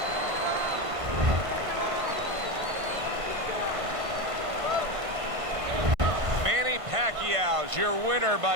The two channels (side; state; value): left; late; 1.5 ms